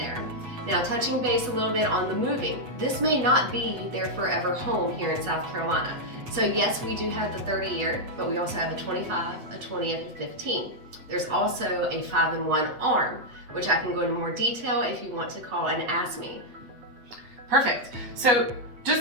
Now, touching base a little bit on the moving, this may not be their forever home here in South Carolina. So yes, we do have the 30-year, but we also have a 25, a 20, and a 15. There's also a 5-in-1 arm, which I can go into more detail if you want to call and ask me. Perfect. So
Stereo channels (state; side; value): late; left; 8.1 ms